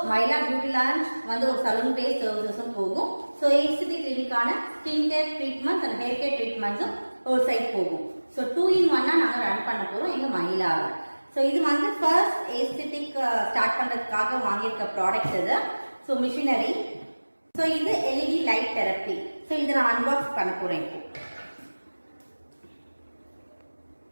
My Lab Beauty launch வந்து ஒரு salon based services போகும். So Aesthetic Clinic ஆன skin care treatments and hair care treatments ஒரு சைட் போகும். So 2 in 1 நாங்க ரன் பண்ண போறோம் எங்க My Lab. So இது வந்து first aesthetic ஸ்டார்ட் பண்றதுக்காக வாங்கியிருக்க ப்ராடக்ட் இது. So machinery. So இது LED light therapy. So இதை நான் அன்பாக்ஸ் பண்ண போறேன் இப்போ.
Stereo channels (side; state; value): both; inverted; correlation -1.00